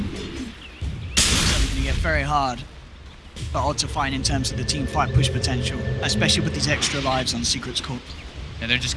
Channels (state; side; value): identical; both; correlation 1.00